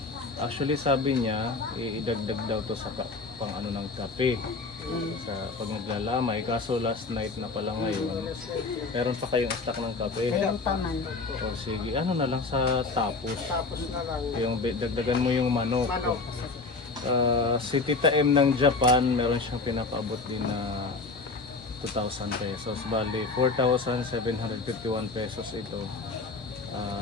Actually, sabi niya, idagdag daw to sa pang ng kape. Sa pag naglalamay. Kaso last night na pala ngayon, meron pa kayong stock ng kape. Meron pa man. O sige, na lang sa tapos. Tapos na lang. Yung dagdagan mo yung manok. Si Tita M ng Japan, meron siyang pinapaabot din na 2,000 pesos. Bali, 4,751 pesos ito.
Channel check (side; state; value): right; quieter; 3.9 dB